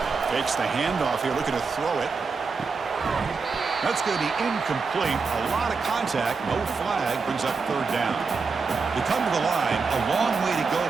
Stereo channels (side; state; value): left; quieter; 4.8 dB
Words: Fakes the handoff here, looking to throw it. That's going to be incomplete. A lot of contact, no flag, brings up 3rd down. They come to the line, a long way to go